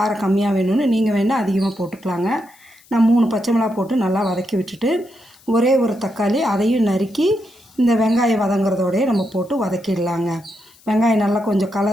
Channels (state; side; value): noise; left; hiss, 28 dB below the sound